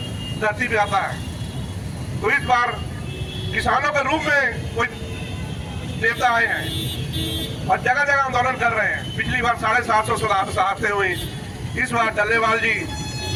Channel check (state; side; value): identical; both; correlation 1.00